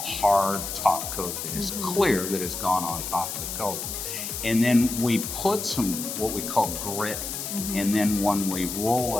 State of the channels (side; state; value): left; noise; hiss, 5 dB below the sound